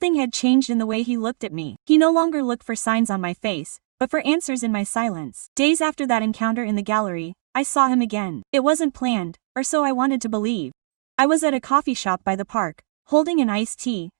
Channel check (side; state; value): left; silent; digital silence